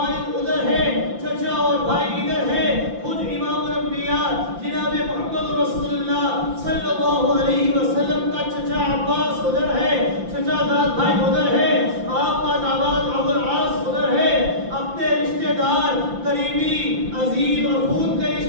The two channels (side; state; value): left; late; 5.8 ms